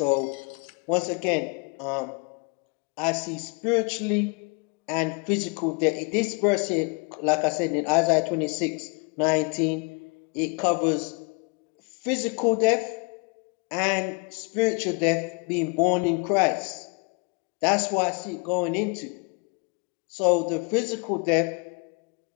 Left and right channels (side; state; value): right; quieter; 32.8 dB